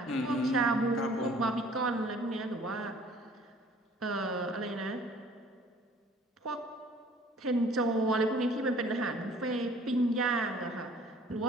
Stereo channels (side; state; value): both; normal; correlation 0.54